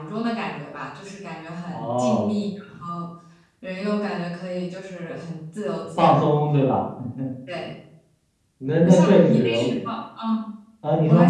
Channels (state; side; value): identical; both; correlation 1.00